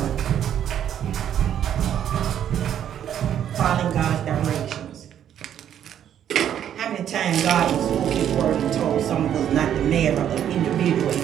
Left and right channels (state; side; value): quieter; left; 9.9 dB